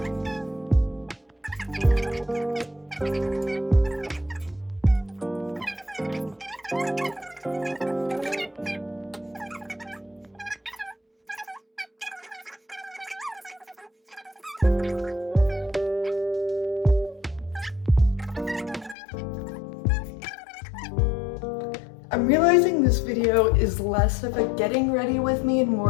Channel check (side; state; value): right; drops out; at 18.9 s